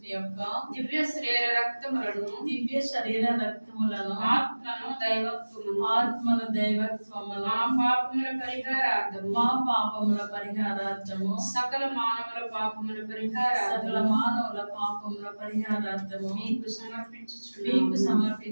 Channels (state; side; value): inverted; both; correlation -1.00